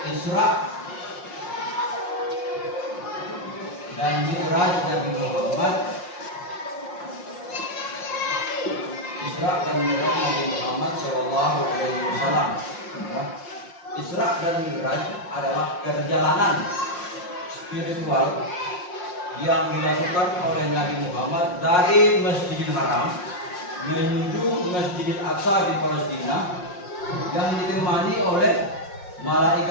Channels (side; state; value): right; late; 5.6 ms